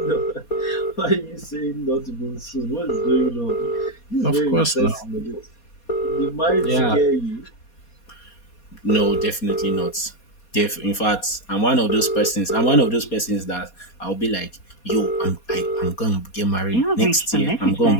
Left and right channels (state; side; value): late; right; 4.2 ms